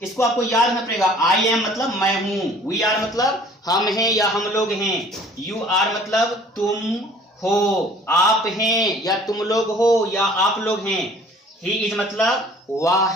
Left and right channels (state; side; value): normal; both; correlation 0.52